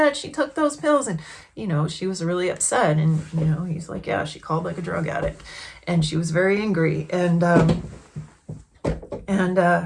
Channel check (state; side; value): identical; both; correlation 1.00